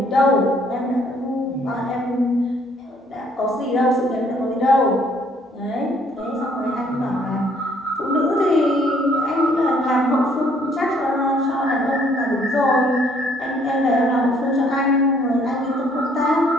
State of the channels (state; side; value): normal; both; correlation 0.64